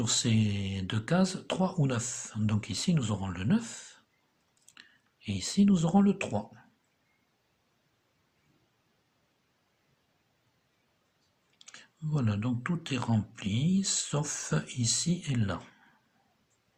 ces 2 cases, 3 ou 9. Donc ici nous aurons le 9, et ici nous aurons le 3. Voilà, donc tout est rempli, sauf ici et là.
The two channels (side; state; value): both; identical; correlation 1.00